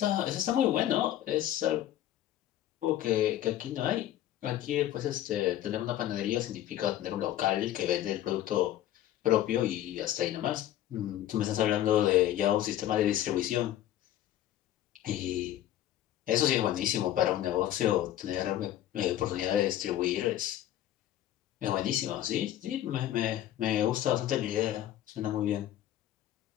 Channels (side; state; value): right; quieter; 12.8 dB